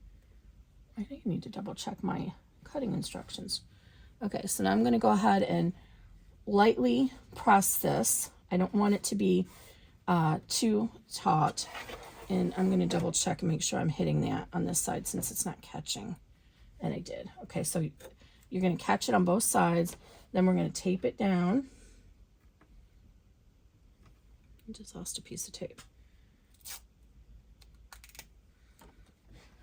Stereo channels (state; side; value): identical; both; correlation 1.00